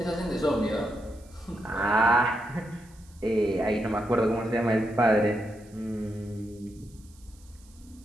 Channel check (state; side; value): noise; right; hiss, 27 dB below the sound